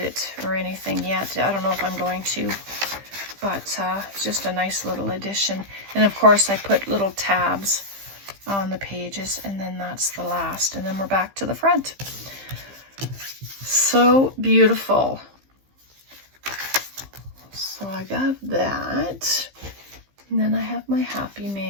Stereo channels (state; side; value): late; left; 15 ms